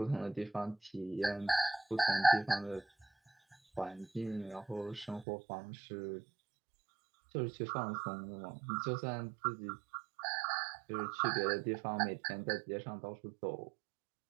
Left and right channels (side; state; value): left; drops out; at 5.2 s